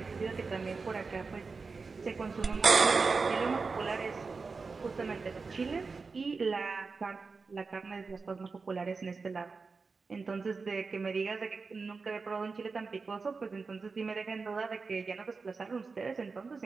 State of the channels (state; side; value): quieter; left; 4.5 dB